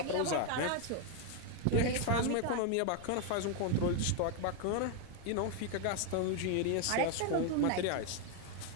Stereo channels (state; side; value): different; both; correlation 0.01